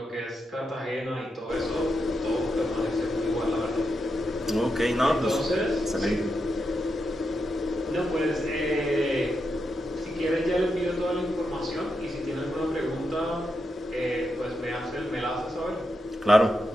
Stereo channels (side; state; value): both; normal; correlation 0.85